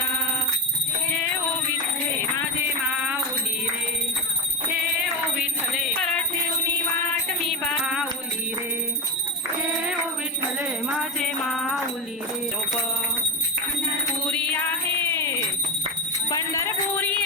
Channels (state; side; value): normal; both; correlation 0.13